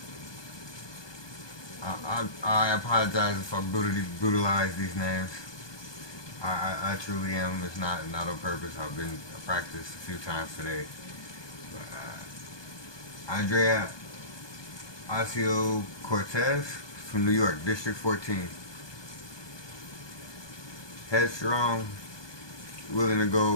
I apologize if I brutalize these names. I truly am. It's not on purpose. I've been practiced a few times today. But, Andrea Ocasio-Cortez from New York, District 14. Headstrong, willing to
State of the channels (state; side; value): late; right; 1.2 ms